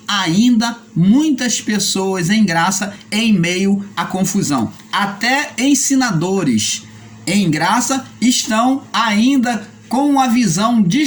ainda muitas pessoas em graça em meio à confusão. Até ensinadores em graça estão ainda com uma visão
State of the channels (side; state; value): both; identical; correlation 1.00